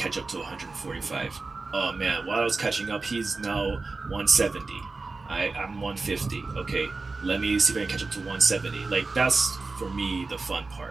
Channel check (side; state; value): left; quieter; 3.8 dB